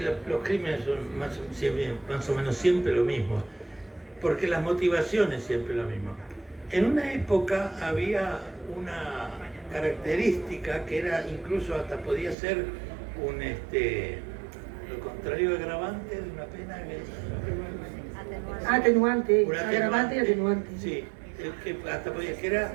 los crímenes son más o menos siempre lo mismo, porque las motivaciones siempre lo mismo. En una época había una característica que era, incluso hasta podía ser lo contrario de agravante de una pena Atenuante, un agravante y atenuante. Sí, que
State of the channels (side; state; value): left; drops out; at 12.4 s